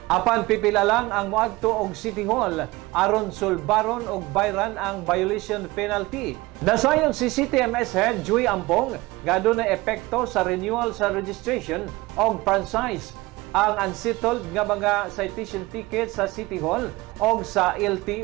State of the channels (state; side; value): quieter; left; 20.9 dB